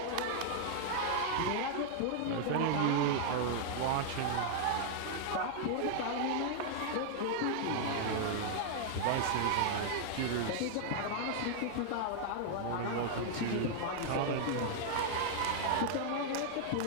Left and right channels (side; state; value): both; different; correlation -0.01